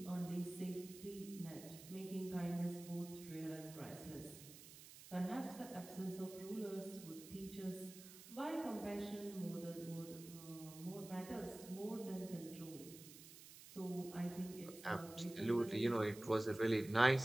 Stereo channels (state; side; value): noise; right; hiss, 16 dB below the sound